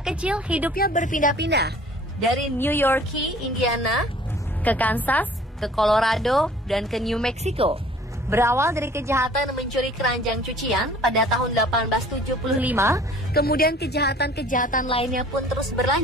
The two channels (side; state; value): both; normal; correlation 0.51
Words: kecil hidupnya berpindah-pindah dari New York, Indiana, ke Kansas, ke Colorado, dan ke New Mexico. Berawal dari kejahatan mencuri keranjang cucian pada tahun 1875, kemudian kejahatan-kejahatan lainnya pun terus